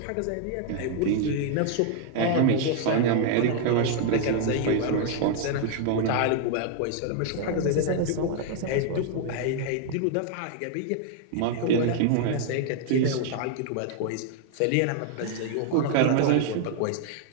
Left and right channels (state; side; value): different; both; correlation 0.00